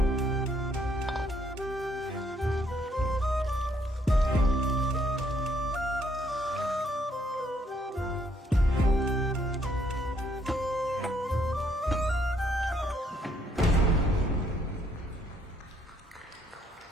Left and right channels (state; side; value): normal; both; correlation 0.70